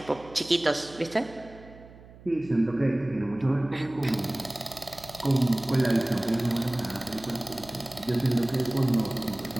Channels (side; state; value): right; noise; hum, 20 dB below the sound